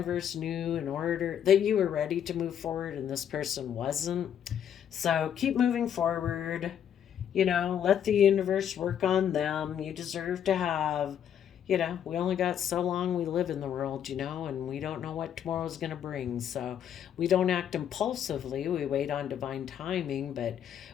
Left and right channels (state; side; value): quieter; right; 9.2 dB